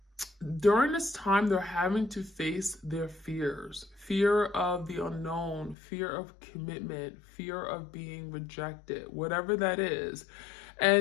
during this time they're having to face their fear of the unknown, fear of commitment, fear of being rejected, whatever that is.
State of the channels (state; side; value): drops out; right; at 5.8 s